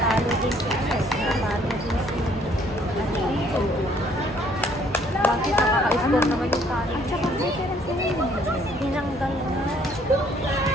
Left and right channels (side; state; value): both; normal; correlation 0.63